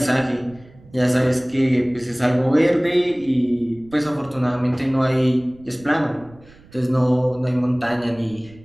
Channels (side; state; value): right; noise; rumble, 25 dB below the sound